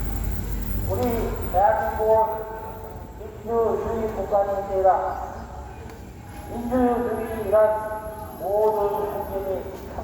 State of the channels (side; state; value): both; identical; correlation 1.00